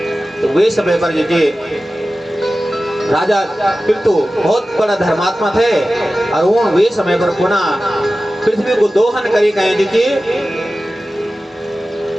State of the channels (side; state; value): both; normal; correlation 0.95